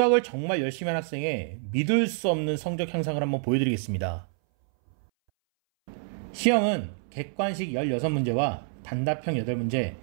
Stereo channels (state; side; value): silent; left; 60 dB below the other